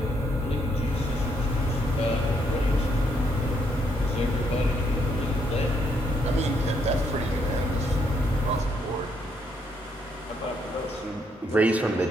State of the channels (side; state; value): both; normal; correlation 0.73